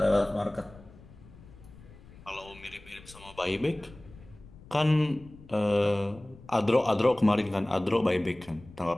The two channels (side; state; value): left; noise; rumble, 21 dB below the sound